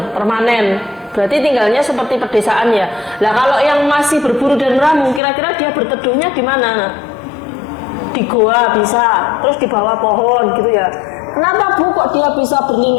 permanen. Berarti tinggalnya seperti pedesaan ya. Nah kalau yang masih berburu dan meramu, kira-kira dia berteduhnya di mana? Di goa bisa, terus di bawah pohon gitu ya. Kenapa Bu kok dia bisa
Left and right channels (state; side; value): drops out; right; at 5.2 s